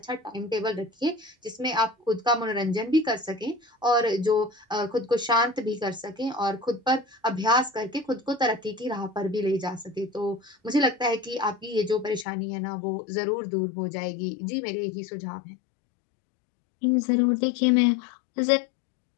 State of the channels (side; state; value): right; drops out; at 12.2 s